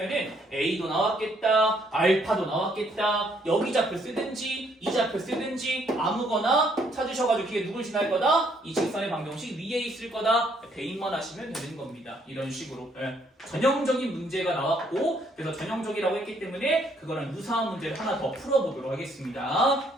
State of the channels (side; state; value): both; normal; correlation 0.68